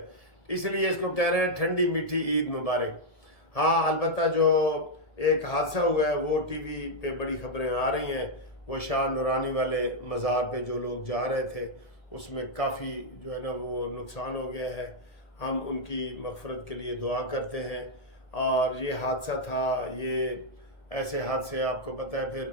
اس لیے اس کو کہہ رہے ہیں ٹھنڈی میٹھی عید مبارک۔ ہاں البتہ جو ایک حادثہ ہوا ہے وہ ٹی وی پہ بڑی خبریں آ رہی ہیں، وہ شاہ نورانی والے مزار پہ جو لوگ جا رہے تھے اس میں کافی جو ہے نا وہ نقصان ہو گیا ہے، ہم ان کی مغفرت کے لیے دعا کرتے ہیں۔ اور یہ حادثہ تھا، یہ ایسے حادثے آپ کو پتہ ہے پھر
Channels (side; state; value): right; late; 1.8 ms